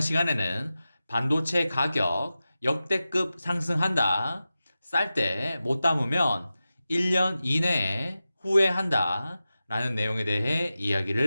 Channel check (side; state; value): both; inverted; correlation -0.94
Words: 반도체 가격 역대급 상승한다. 쌀 때 못 담으면 1년 이내에 후회한다. 라는 내용에 대해